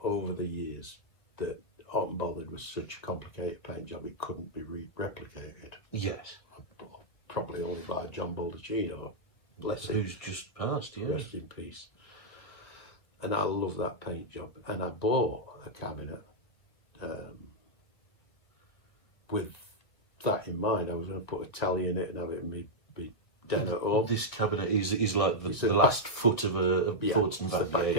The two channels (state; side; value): late; right; 1.5 ms